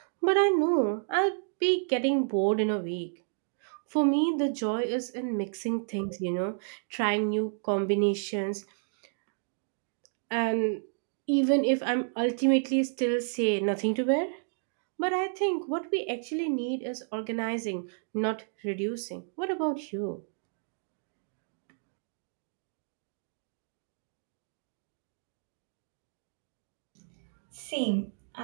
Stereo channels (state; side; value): silent; left; digital silence